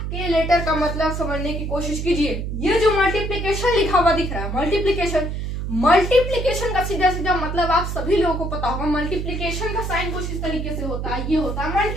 के लेटर का मतलब समझने की कोशिश कीजिए। ये जो मल्टीप्लिकेशन लिखा हुआ दिख रहा है, मल्टीप्लिकेशन का सीधा सीधा मतलब आप सभी लोगों को पता होगा। मल्टीप्लिकेशन का साइन कुछ इस तरीके से होता है, ये होता है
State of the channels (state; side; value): noise; right; hum, 4 dB below the sound